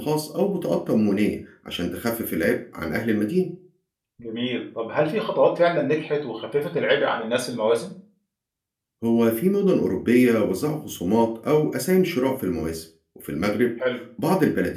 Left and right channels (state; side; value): identical; both; correlation 1.00